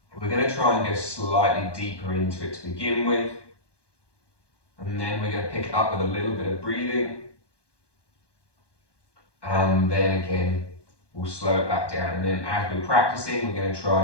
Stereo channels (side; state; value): right; late; 1.2 ms